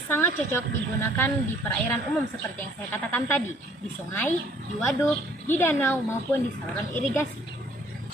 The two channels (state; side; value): normal; both; correlation 0.59